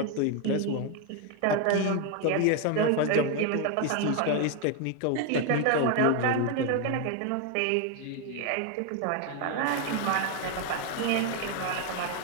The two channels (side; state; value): both; different; correlation 0.01